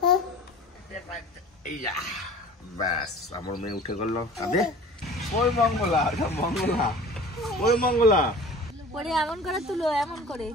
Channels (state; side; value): normal; both; correlation 0.42